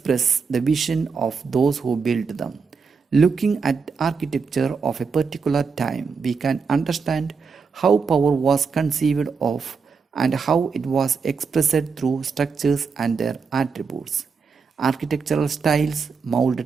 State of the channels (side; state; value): left; quieter; 5.3 dB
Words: the vision of those who built them. Looking at architecture of a particular time, we can understand how power was conceived of and how it was expressed through structures and their attributes. Architectural styles mold